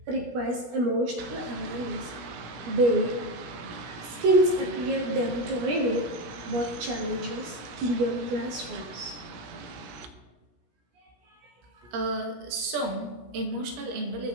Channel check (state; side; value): late; left; 17 ms